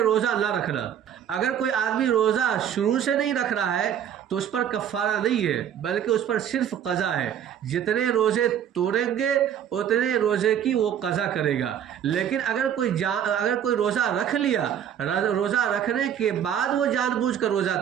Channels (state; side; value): quieter; left; 9.4 dB